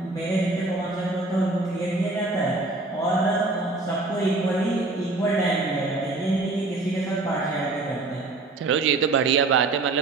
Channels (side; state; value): left; quieter; 3.2 dB